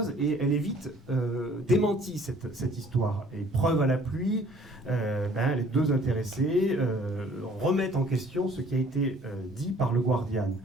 et elle est vite démentie, cette histoire. Et preuve à la pluie, les deux intéressés remettent en question ce qui a été dit par le Guardian.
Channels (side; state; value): both; normal; correlation 0.56